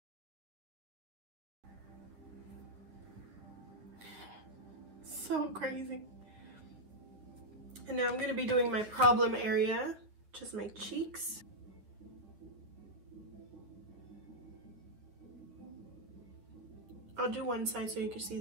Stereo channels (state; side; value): late; left; 9.8 ms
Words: So crazy. And now I'm going to be doing my problem area, which is my cheeks. I'll do one side so you can see